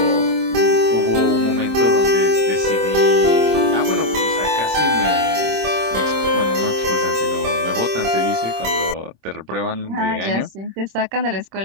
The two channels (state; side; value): late; left; 26 ms